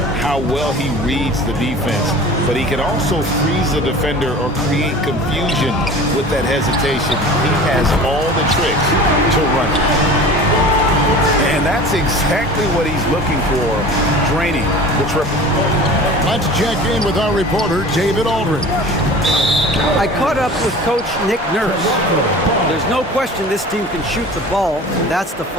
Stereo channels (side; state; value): both; normal; correlation 0.40